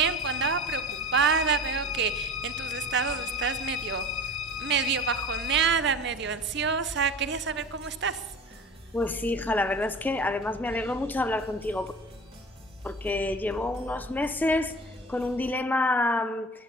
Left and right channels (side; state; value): both; normal; correlation 0.36